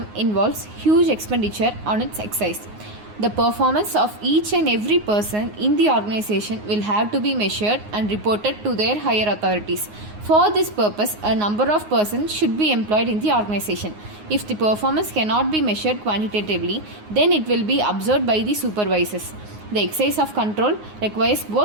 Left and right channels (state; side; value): late; left; 9.6 ms